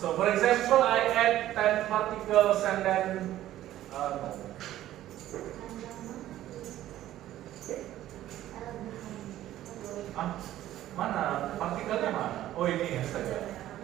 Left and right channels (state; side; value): quieter; left; 13.5 dB